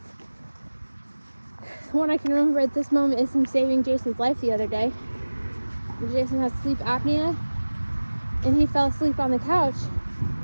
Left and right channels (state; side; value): inverted; both; correlation -1.00